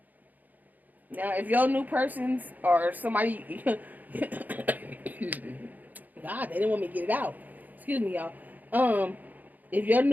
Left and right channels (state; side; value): late; left; 0.082 ms